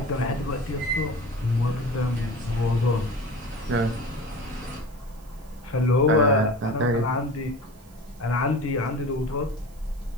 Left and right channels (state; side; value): noise; right; hiss, 28 dB below the sound